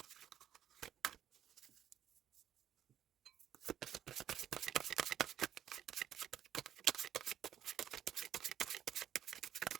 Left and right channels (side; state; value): left; quieter; 10.6 dB